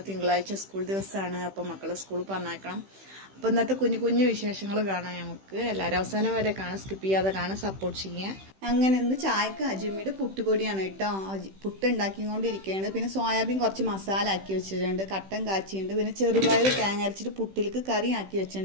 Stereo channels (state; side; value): late; left; 15 ms